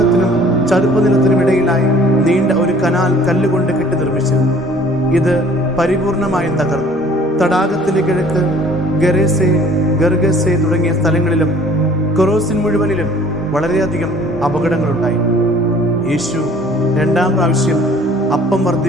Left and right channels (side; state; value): both; normal; correlation 0.53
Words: ചതുപ്പ് നിലത്തിനും ഇടയിലായി നീണ്ട ഒരു കനാൽ കല്ലുകൊണ്ട് കെട്ടി നിർമ്മിച്ചിരുന്നു. ഇത് പരിപൂർണമായും തകർന്നു. തടാകത്തിന്റെ കിഴക്ക് ഗരേസെ, ഗർഗസെ തുടങ്ങിയ സ്ഥലങ്ങളിലും കൊറോസിൻ മുഴുവനിലും വളരെയധികം അപകടങ്ങളുണ്ടായി. യേശു 2ാം പ്രാവശ്യം അപ്പം